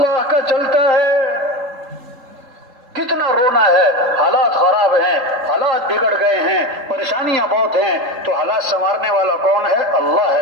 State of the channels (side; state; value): left; late; 3.8 ms